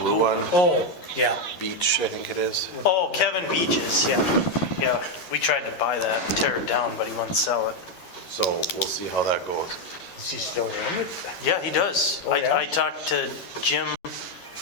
one, Oh, yeah. beach, I think it is. Oh, Kevin Beaches, yeah. Yeah, we tried to buy that and tear it down, but he wouldn't sell it. So we'll see how that goes. Does he still own it? Yeah, he does. Oh, yeah? I talked to Jim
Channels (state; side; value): late; right; 11 ms